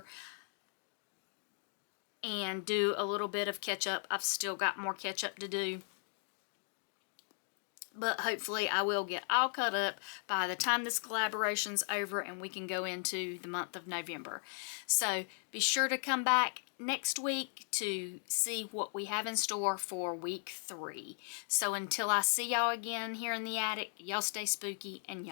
and do a little bit of catch up. I've still got more catch up to do. But hopefully I will get all caught up by the time this collaboration's over and we can go into the month of November. So be sure to come back next week to see what we have in store for week 3. So until I see y'all again here in the attic, y'all stay spooky and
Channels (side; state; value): right; silent; 53 dB below the other